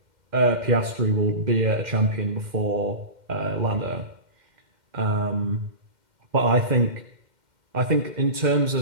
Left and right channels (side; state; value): left; late; 2.1 ms